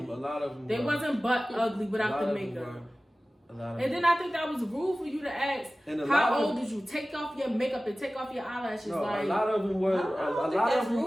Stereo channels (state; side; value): normal; both; correlation 0.97